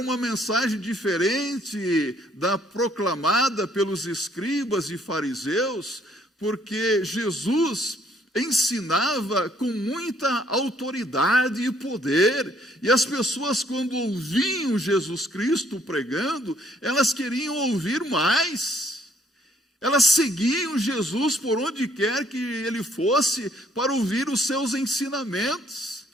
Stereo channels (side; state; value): both; normal; correlation 0.65